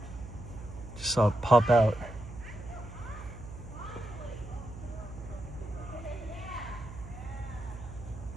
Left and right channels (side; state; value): right; noise; hum, 12 dB below the sound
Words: Just saw it pop out.